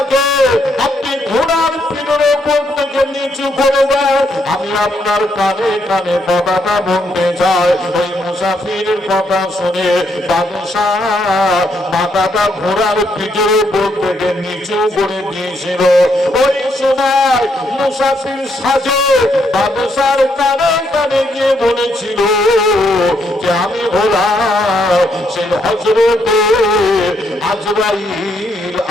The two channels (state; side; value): normal; both; correlation 0.75